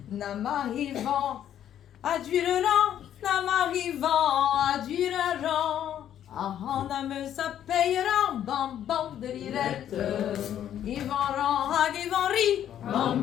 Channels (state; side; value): quieter; right; 10.5 dB